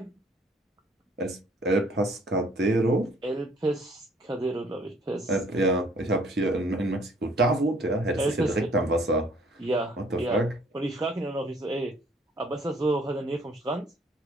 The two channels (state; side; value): normal; both; correlation 0.60